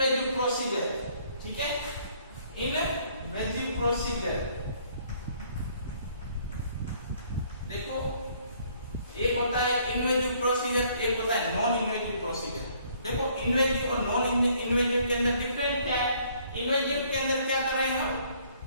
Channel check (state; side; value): inverted; both; correlation -0.62